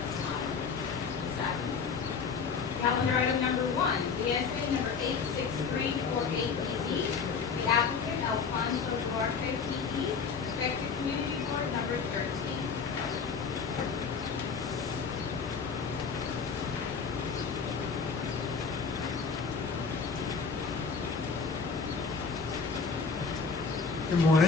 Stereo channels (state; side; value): quieter; right; 5.4 dB